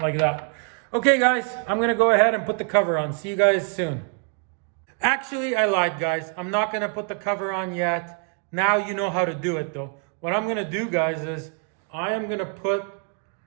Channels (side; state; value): left; quieter; 39.8 dB